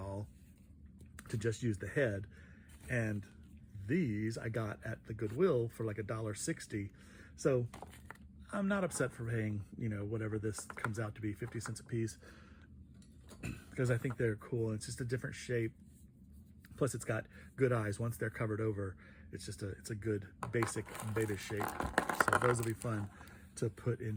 to just use the head, and these I got at the Goodwill for like $1.60. So I'm not upset for paying, you know, whatever this comes out to be, 50 cents a piece, because I think they're cool. It's just a different shape. Plus it's got good eyes. Once they're covered over, it's a good basic baby shape. So those will be fun to put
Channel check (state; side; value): identical; both; correlation 1.00